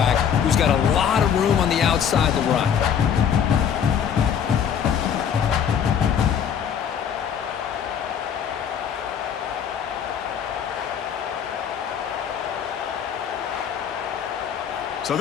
who's got a lot of room on the outside to run. So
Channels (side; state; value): right; quieter; 8.1 dB